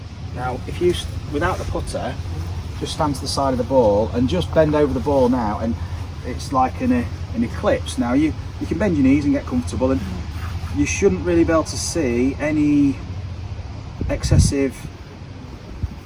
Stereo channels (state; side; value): identical; both; correlation 1.00